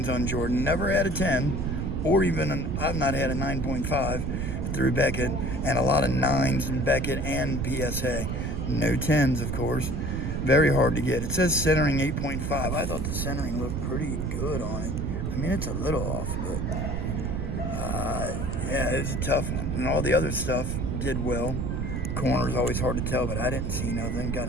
on Jordan. Never had a 10, or even I've not had a 9.5 through Beckett, and a lot of 9s in Beckett and PSA. No 10s, of course. Very hard to get. It says centering 8.5. I thought the centering looked pretty good on it. I mean, it's a little off, but yeah, it's a tough one. And all the other stuff did well. Corners always hard to tell, but I didn't see nothing. Got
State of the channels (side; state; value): right; noise; rumble, 1 dB below the sound